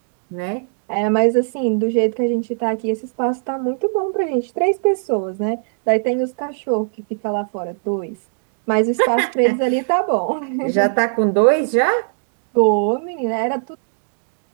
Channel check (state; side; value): silent; left; digital silence